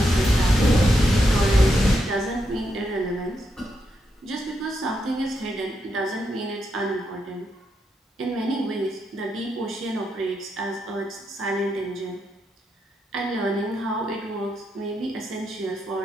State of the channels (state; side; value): normal; both; correlation 0.82